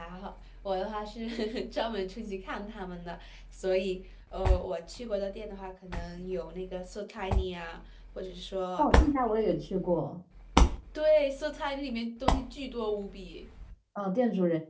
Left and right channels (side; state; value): both; identical; correlation 1.00